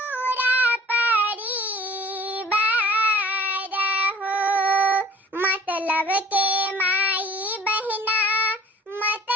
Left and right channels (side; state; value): both; normal; correlation 0.48